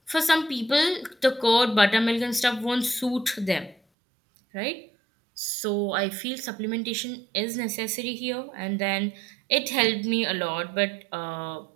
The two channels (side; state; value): left; drops out; at 3.8 s